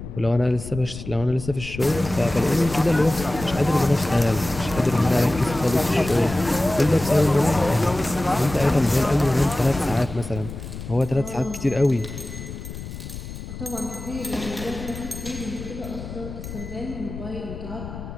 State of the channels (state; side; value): noise; left; rumble, 11 dB below the sound